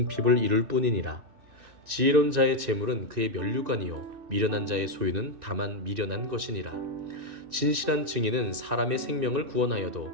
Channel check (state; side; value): late; left; 2.6 ms